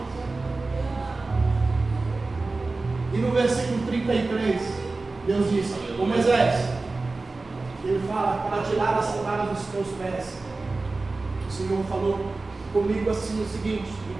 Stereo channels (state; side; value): quieter; left; 3.5 dB